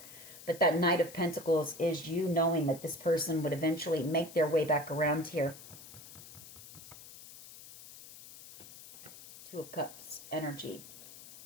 But that Knight of Pentacles is you knowing that this person would eventually make their way back around here. Two of Cups energy.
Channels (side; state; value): left; noise; hiss, 17 dB below the sound